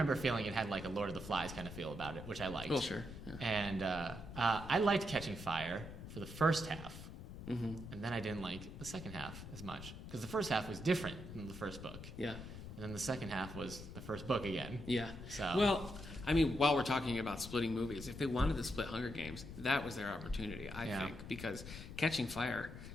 feeling it had like a Lord of the Flies kind of feel about it, which I liked. Oh, sure. Yeah. And I liked Catching Fire for the first half, and then I didn't like the second half as much because the first half was different than the first book. Yeah. And then the second half was the first book again. Yeah. So well, I mean, while we're talking about splitting movies, if they wanted to split Hunger Games, that was their opportunity, I think, because Catching Fire,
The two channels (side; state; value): left; noise; rumble, 11 dB below the sound